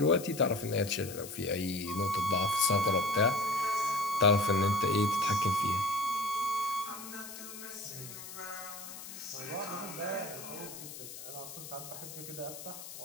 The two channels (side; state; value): left; noise; hiss, 12 dB below the sound